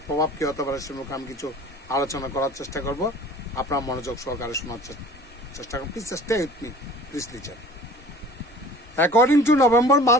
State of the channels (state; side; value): normal; both; correlation 0.45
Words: প্রভাব কী হতে পারে সে আমি কিছু আলোচনা করার চেষ্টা করব। আপনার মনোযোগ সহকারে শোনার চেষ্টা করুন। Please stay with me, please listen. According to November